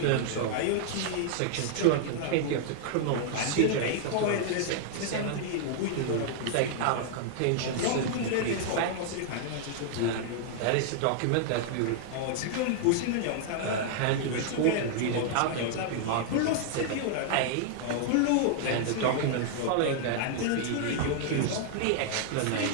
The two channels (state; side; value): different; both; correlation -0.01